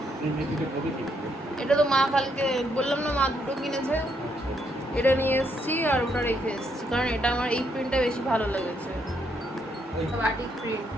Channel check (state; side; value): normal; both; correlation 0.75